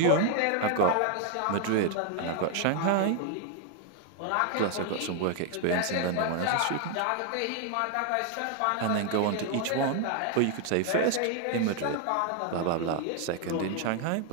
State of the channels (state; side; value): different; both; correlation 0.00